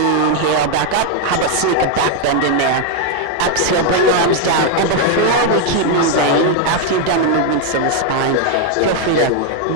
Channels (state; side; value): different; both; correlation 0.01